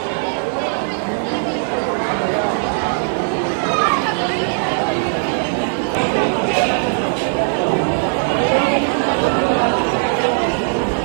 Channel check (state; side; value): silent; left; digital silence